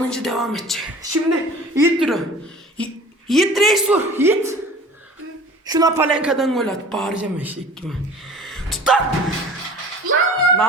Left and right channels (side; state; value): both; normal; correlation 0.43